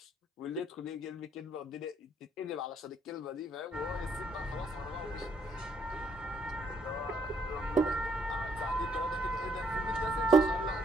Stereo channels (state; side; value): normal; both; correlation 0.70